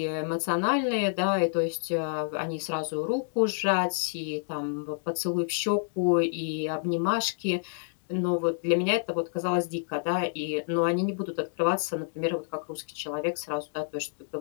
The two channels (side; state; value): right; silent; digital silence